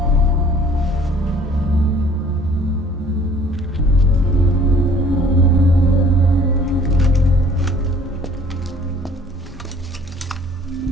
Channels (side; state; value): both; normal; correlation 0.54